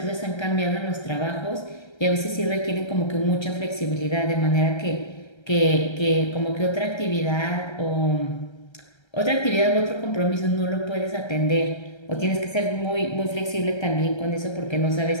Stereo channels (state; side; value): late; right; 1.3 ms